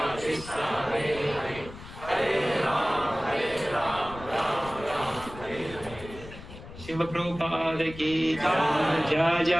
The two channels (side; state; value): left; noise; rumble, 15 dB below the sound